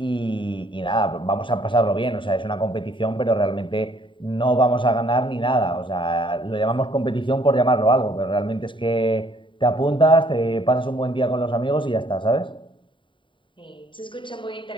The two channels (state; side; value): late; right; 0.24 ms